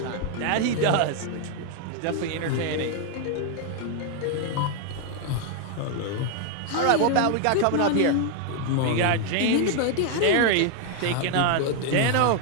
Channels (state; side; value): different; both; correlation 0.00